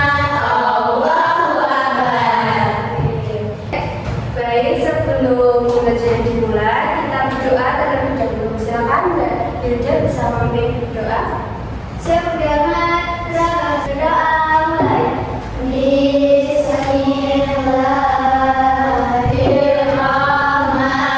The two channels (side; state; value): both; identical; correlation 1.00